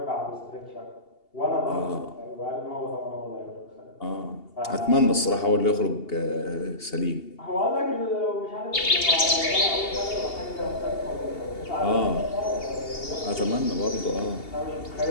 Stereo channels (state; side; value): late; right; 2.8 ms